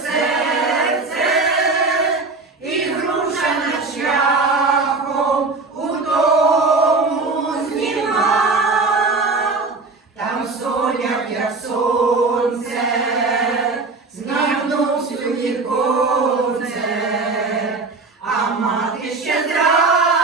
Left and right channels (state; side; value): quieter; left; 3.8 dB